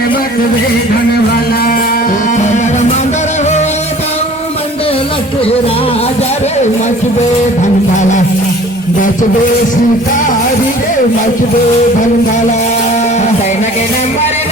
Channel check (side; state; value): both; normal; correlation 0.48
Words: मत बेधन वाला मंदर हो ताऊ मंडल के राजा रे मत बेधन वाला मत बे शिकारी रे मत बेधन वाला तेना के नंबर